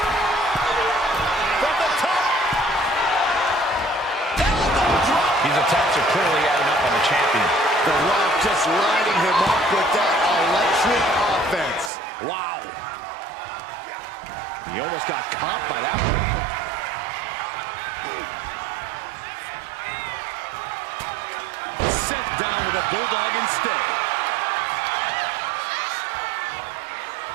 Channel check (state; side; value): drops out; left; at 11.9 s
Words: From the top. Elbow drop. These attacks are clearly adding up on the champion. The Rock just lighting him up with that electric offense. Wow. He almost got caught by that one. Sent down with a bulldog instead.